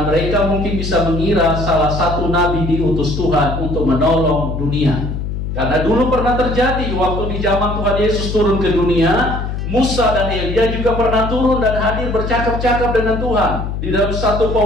mereka mungkin bisa mengira salah satu nabi diutus Tuhan untuk menolong dunia. Karena dulu pernah terjadi waktu di zaman Tuhan Yesus turun ke dunia, Musa dan Elia juga pernah turun dan hadir bercakap-cakap dengan Tuhan di dalam satu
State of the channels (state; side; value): noise; left; hum, 4 dB below the sound